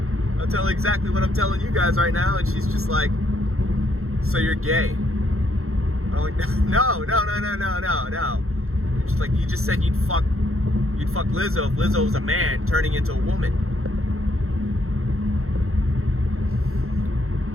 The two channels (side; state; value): left; late; 0.63 ms